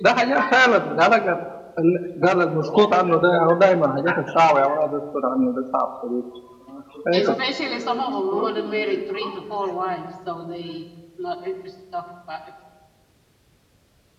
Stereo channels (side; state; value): both; identical; correlation 1.00